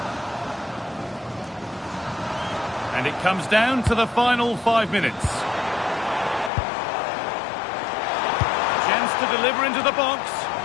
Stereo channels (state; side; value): drops out; right; at 6.5 s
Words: And it comes down to the final 5 minutes. Chance to deliver into the box.